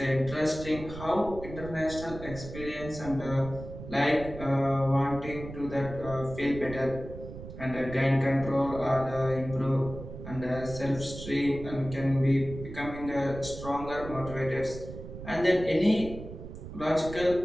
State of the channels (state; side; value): noise; right; rumble, 11 dB below the sound